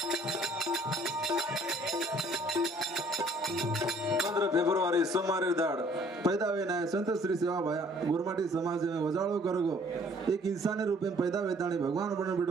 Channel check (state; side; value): normal; both; correlation 0.58